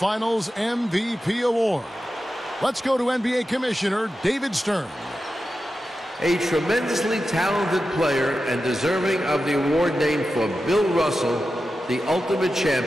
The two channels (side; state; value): both; normal; correlation 0.91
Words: MVP Award. Let's go to NBA Commissioner David Stern. A tremendously talented player and deserving of the award named for Bill Russell, the ultimate